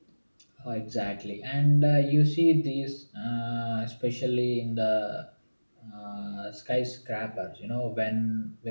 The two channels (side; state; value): both; inverted; correlation -1.00